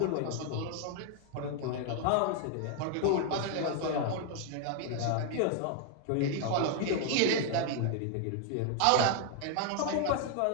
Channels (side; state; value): both; different; correlation 0.00